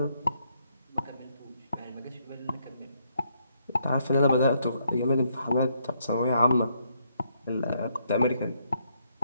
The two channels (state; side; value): inverted; both; correlation -0.74